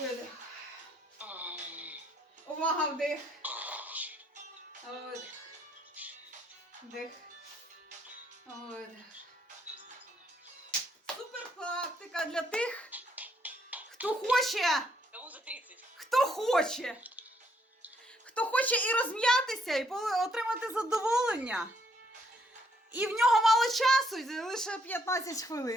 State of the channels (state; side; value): normal; both; correlation 0.71